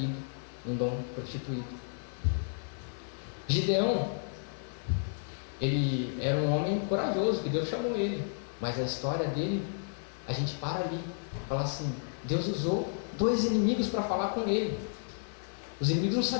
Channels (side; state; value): right; silent; digital silence